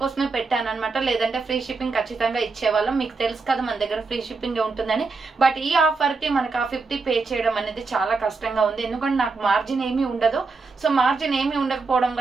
పెట్టాను అనమాట. లేదంటే ఫ్రీ షిప్పింగ్ ఖచ్చితంగా ఇచ్చేవాళ్ళం. మీకు తెలుసు కదా మన దగ్గర ఫ్రీ షిప్పింగ్ ఉంటుందని. బట్ ఈ ఆఫర్ కి మనకు ఆ 50 పే చేయడం అనేది చాలా కష్టంగా ఉంది. ఎందుకంటే నాకు మార్జిన్ ఏమీ ఉండదు. సో మార్జిన్ ఏమీ ఉండకపోవడం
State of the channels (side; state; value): left; quieter; 4.2 dB